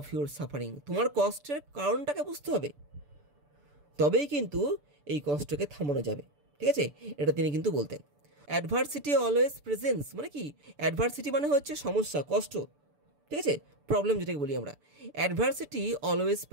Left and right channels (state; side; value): late; left; 6.9 ms